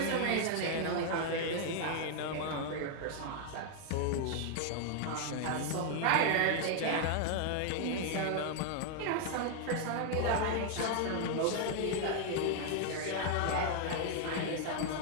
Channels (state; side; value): different; both; correlation 0.00